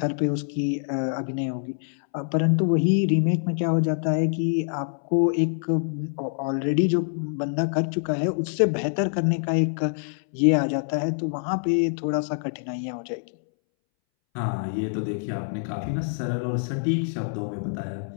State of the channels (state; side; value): silent; right; 61 dB below the other